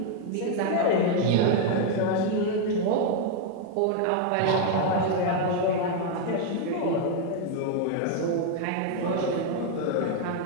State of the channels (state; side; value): different; both; correlation 0.00